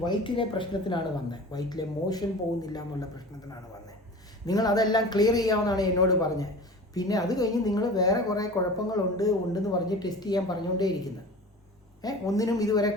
വയറ്റിലെ പ്രശ്നത്തിനാണ് വന്നത്, വയറ്റിലെ മോഷൻ പോകുന്നില്ല എന്നുള്ള പ്രശ്നത്തിനാണ് വന്നത്. നിങ്ങൾ അതെല്ലാം ക്ലിയർ ചെയ്യാമെന്നാണ് എന്നോട് പറഞ്ഞത്. പിന്നെ അത് കഴിഞ്ഞ് നിങ്ങൾ വേറെ കുറേ ഉണ്ടെന്ന് പറഞ്ഞ് ടെസ്റ്റ് ചെയ്യാൻ പറഞ്ഞുകൊണ്ടേയിരിക്കുന്നത്. ഒന്നിനും ഇതുവരെ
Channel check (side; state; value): both; normal; correlation 0.37